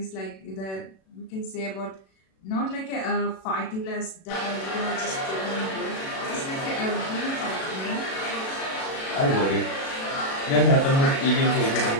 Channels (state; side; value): late; right; 37 ms